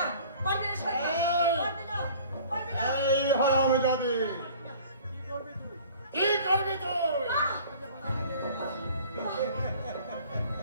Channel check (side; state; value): both; inverted; correlation -0.48